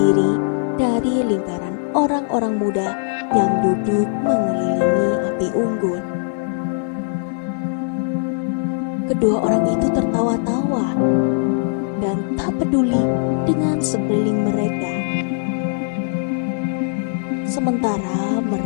dari lingkaran orang-orang muda yang duduk mengelilingi api unggun. Kedua orang itu tertawa-tawa dan tak peduli dengan sekeliling mereka. Sementara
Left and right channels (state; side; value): silent; right; digital silence